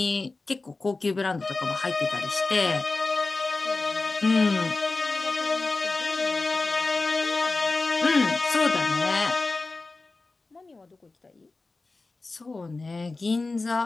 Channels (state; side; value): quieter; right; 3.5 dB